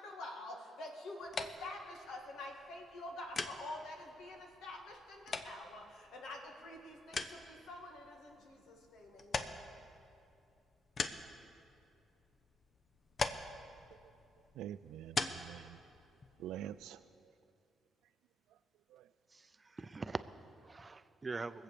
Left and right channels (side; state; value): both; normal; correlation 0.79